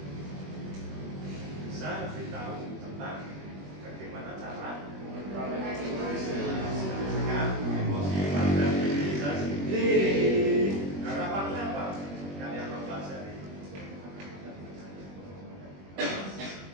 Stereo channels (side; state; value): left; late; 21 ms